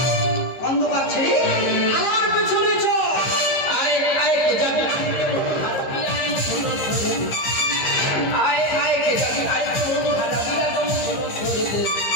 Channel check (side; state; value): right; late; 15 ms